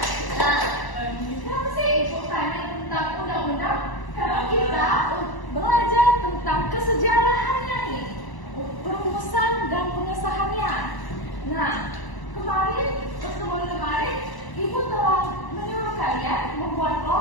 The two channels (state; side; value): late; right; 1.0 ms